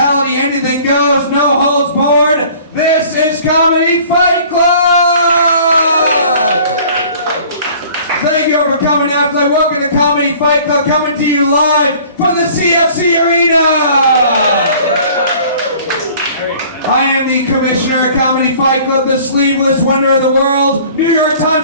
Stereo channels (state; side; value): inverted; both; correlation -0.50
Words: anything goes, no holds barred. This is Comedy Fight Club! Thank you for coming out tonight. Welcome to Comedy Fight Club, coming to you live from the CFC Arena! I am the commissioner of Comedy Fight Club, the sleeveless wonder of the world, New York